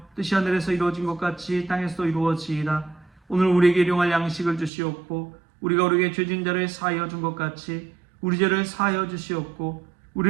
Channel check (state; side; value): drops out; left; at 4.7 s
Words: 뜻이 하늘에서 이루어진 것 같이 땅에서도 이루어지이다. 오늘 우리에게 일용할 양식을 주시옵고 우리가 우리에게 죄진 자를 사하여 준 것 같이 우리 죄를 사하여 주시옵고